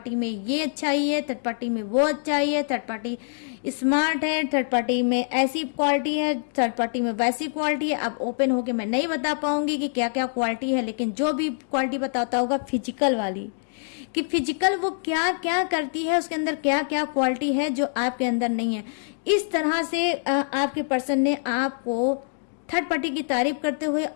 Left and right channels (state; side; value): silent; right; digital silence